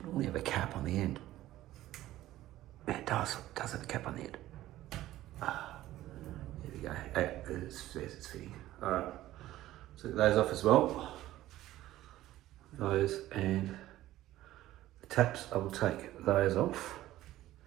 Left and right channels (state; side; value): quieter; left; 14.9 dB